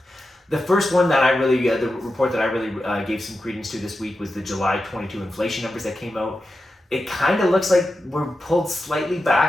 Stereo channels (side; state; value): both; normal; correlation 0.90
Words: The first one that the report that I really gave some credence to this week was the July 22 inflation numbers that came out. It kind of looks like we're pulled slightly